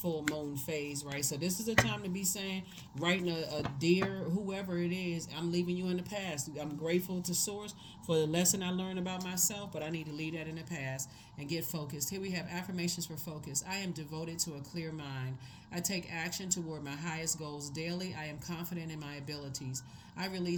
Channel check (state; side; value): identical; both; correlation 1.00